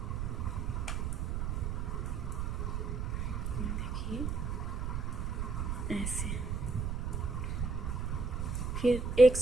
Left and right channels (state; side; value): noise; right; rumble, 1 dB below the sound